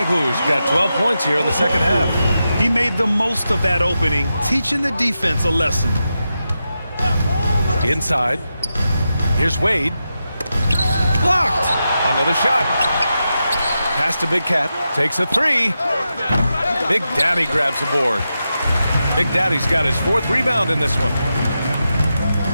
got 12 points here in the second half. He made the most of that opening, teaching the defense a lesson. Inside. Here's Wade. Blocked. Another shot. Pass to Big Cat. Takes a 3. Big Daddy grabs the board. Big Daddy's got his 4th rebound in this one.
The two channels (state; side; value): inverted; both; correlation -0.89